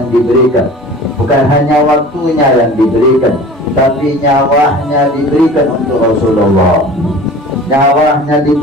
diberikan, bukan hanya waktunya yang diberikan, tapi nyawanya diberikan untuk Rasulullah, nyawanya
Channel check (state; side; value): normal; both; correlation 0.41